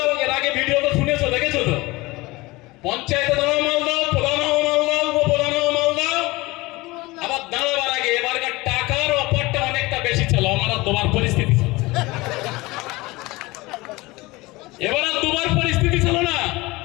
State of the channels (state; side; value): quieter; right; 21.8 dB